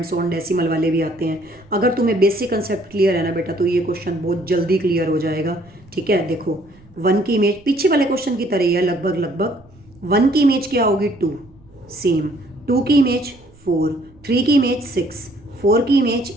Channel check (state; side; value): noise; right; rumble, 27 dB below the sound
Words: so on, decimal वाले भी आते हैं। अगर तुम्हें बेसिक कंसेप्ट क्लियर है ना बेटा, तो ये क्वेश्चन बहुत जल्दी क्लियर हो जाएगा। ठीक है, देखो 1 की इमेज पीछे वाले क्वेश्चन की तरह ही है लगभग लगभग। 1 की इमेज क्या होगी 2, सेम, 2 की इमेज 4, 3 की इमेज 6, 4 की इमेज